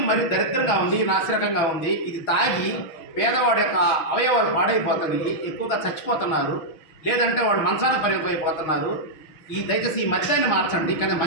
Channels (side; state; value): right; late; 6.1 ms